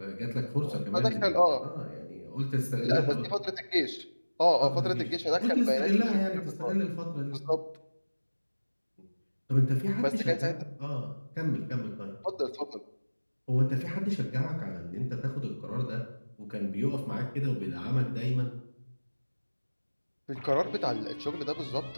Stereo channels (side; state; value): both; inverted; correlation -1.00